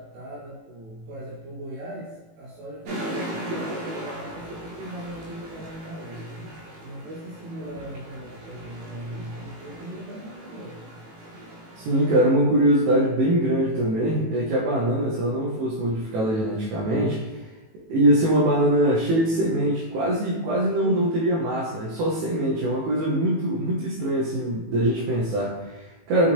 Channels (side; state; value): left; late; 18 ms